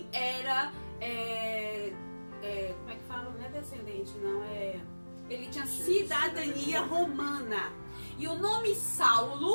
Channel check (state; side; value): inverted; both; correlation -1.00